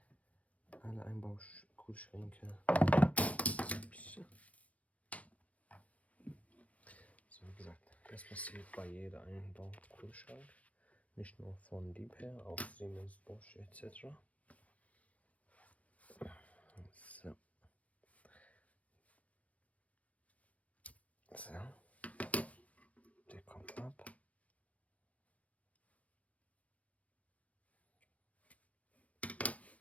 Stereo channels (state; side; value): late; right; 0.066 ms